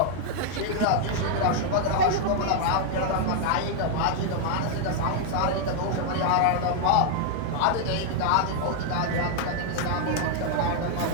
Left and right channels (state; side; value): different; both; correlation 0.00